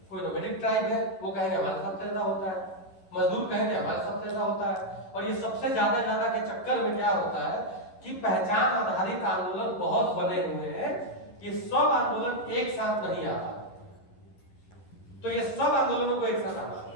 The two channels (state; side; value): late; right; 11 ms